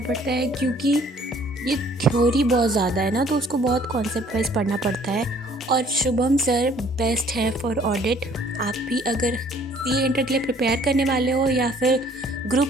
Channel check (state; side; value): normal; both; correlation 0.57